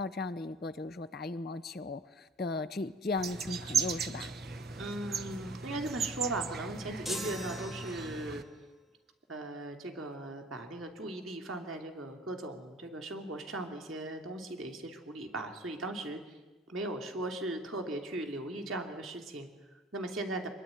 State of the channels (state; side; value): normal; both; correlation 0.49